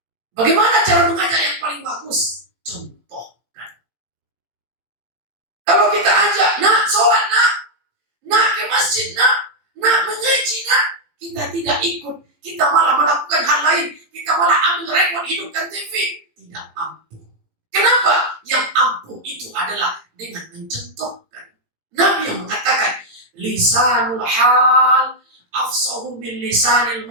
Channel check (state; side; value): late; left; 18 ms